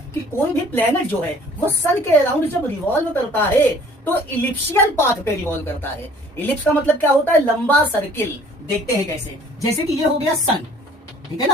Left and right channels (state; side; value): normal; both; correlation 0.53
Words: कि कोई भी प्लेनेट जो है वो सन के अराउंड जब रिवॉल्व करता है तो इलिप्शियल पाथ पे रिवॉल्व करता है। इलिप्स का मतलब क्या होता है? लंबा सर्किल। देखते हैं कैसे। जैसे कि ये हो गया सन, ठीक है ना,